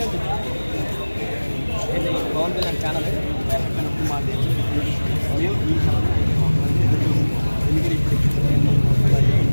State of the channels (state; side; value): inverted; both; correlation -1.00